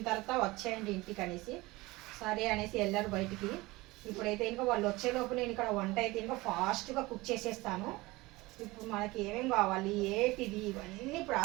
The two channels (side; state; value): left; quieter; 21.1 dB